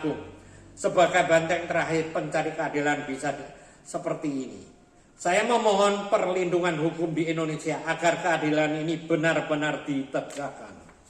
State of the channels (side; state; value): both; identical; correlation 1.00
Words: Agung? Sebagai benteng terakhir pencari keadilan bisa seperti ini. Saya memohon perlindungan hukum di Indonesia agar keadilan ini benar-benar ditegakkan.